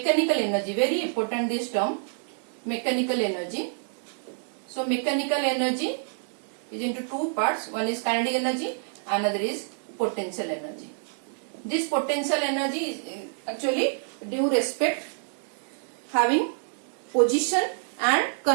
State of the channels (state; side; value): silent; left; 60 dB below the other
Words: energy. Very important this term, mechanical energy. So mechanical energy is into two parts. One is kinetic energy, another is potential energy. This potential energy is actually due respect having position and